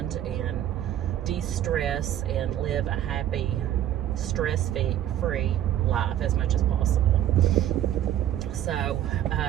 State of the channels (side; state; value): left; quieter; 11.7 dB